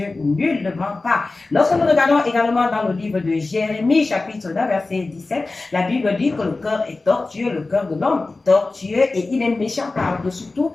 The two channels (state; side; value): quieter; right; 3.4 dB